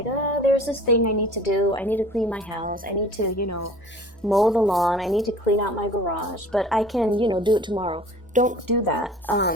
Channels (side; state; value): both; normal; correlation 0.46